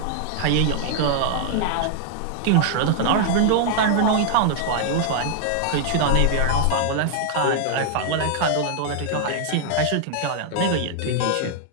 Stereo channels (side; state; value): both; different; correlation -0.01